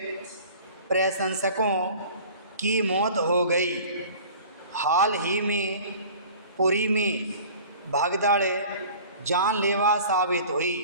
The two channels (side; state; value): both; inverted; correlation -0.44